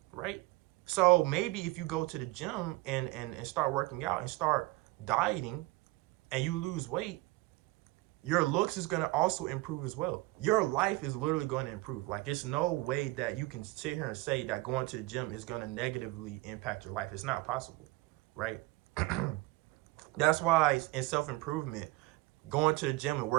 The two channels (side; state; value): left; quieter; 20.8 dB